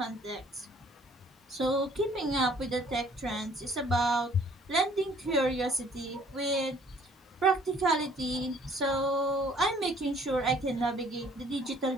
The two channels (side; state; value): both; normal; correlation 0.58